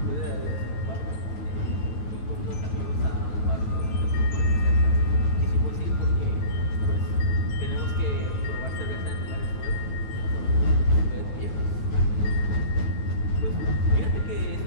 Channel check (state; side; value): late; right; 9.3 ms